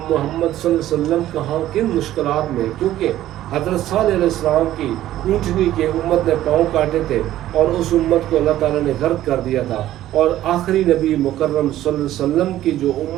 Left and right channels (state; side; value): quieter; left; 13.6 dB